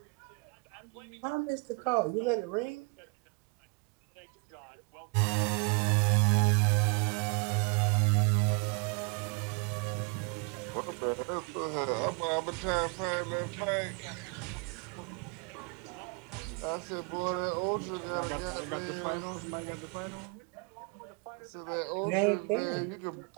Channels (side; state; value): left; quieter; 33.2 dB